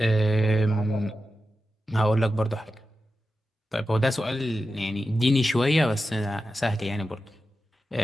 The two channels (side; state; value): both; normal; correlation 0.91